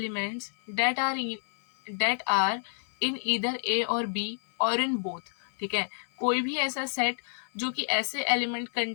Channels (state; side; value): silent; right; 59 dB below the other